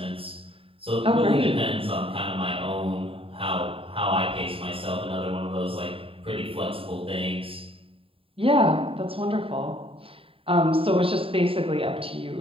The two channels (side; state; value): left; late; 0.27 ms